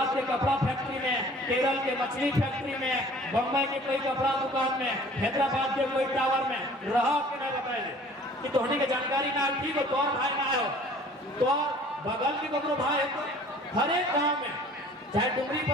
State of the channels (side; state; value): both; normal; correlation 0.50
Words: के कपड़ा फैक्ट्री में, केरल के मछली फैक्ट्री में, बम्बई के कोई कपड़ा दुकान में, हैदराबाद के कोई टावर में रहो कि नहीं बताइए कि तोहनी के जानकारी ना ठीक हो, तो भाई ना हो तो बगल के कपड़ो भाई हो, हर एक गाँव में चाहे डुमरी